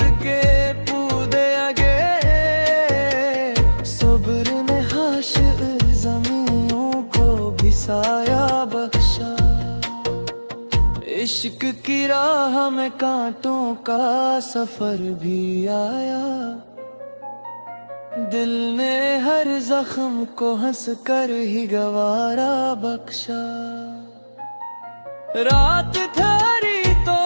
के पूदे आगे, सब्र ने हाशिर ज़मीनों को भी साया बख्शा। इश्क की राह में कांटों का सफर भी आया, दिल ने हर जख्म को हंस कर ही गवारा बख्शा। रात ठहरी तो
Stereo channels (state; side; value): inverted; both; correlation -1.00